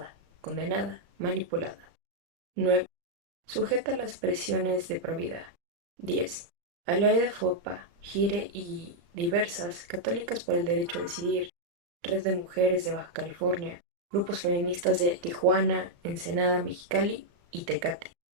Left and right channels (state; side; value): late; left; 35 ms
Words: condenada, manipulada. 9. Sujeta a las presiones de provida. 10. A la ley de FOPA, GIRE y diversas, católicas por el derecho a decidir, Red de Mujeres de Baja California, grupos feministas de Tijuana, Ensenada, Mexicali y Tecate,